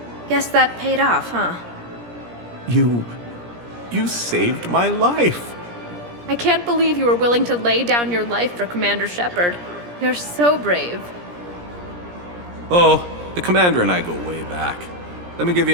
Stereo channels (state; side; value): late; left; 17 ms